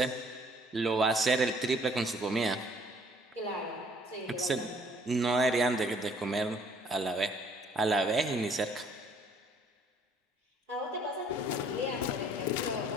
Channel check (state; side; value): normal; both; correlation 0.60